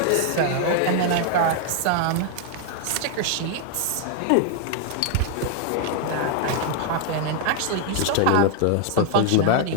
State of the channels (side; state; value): both; different; correlation 0.00